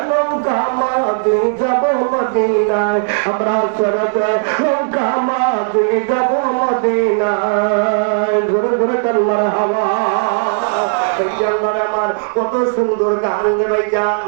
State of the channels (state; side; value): silent; left; digital silence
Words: নৌকা মাঝি যাব মদিনায়, আমরা ছেড়ে দে নৌকা মাঝি যাব মদিনায়। ঘুরে ঘুরে কাল্লার হাওয়া আমার কত সুন্দর গান রে ভাইজান।